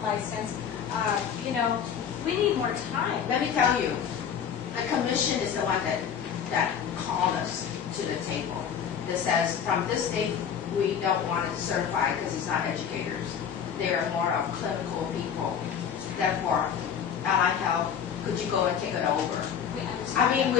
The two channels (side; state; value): right; quieter; 7.9 dB